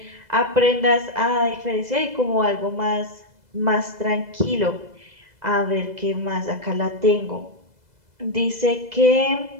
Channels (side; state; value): left; late; 2.0 ms